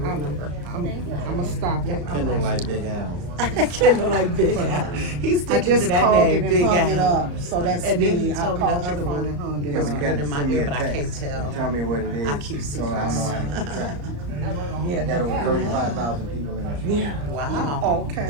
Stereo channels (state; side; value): late; left; 34 ms